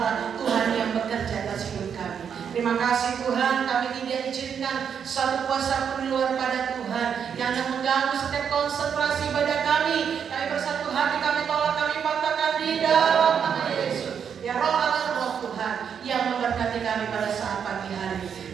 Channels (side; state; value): left; quieter; 7.5 dB